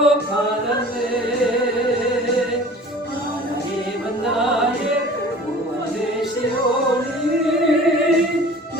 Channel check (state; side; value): normal; both; correlation 0.44